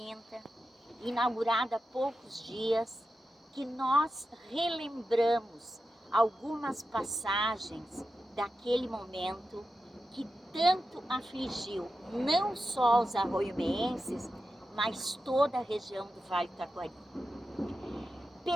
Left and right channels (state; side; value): normal; both; correlation 0.91